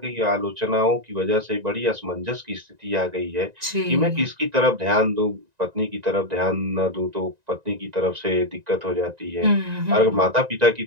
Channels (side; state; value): left; late; 1.9 ms